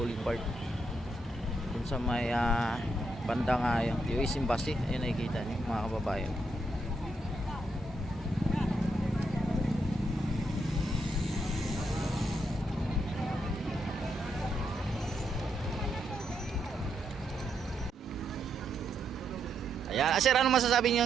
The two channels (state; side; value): normal; both; correlation 0.79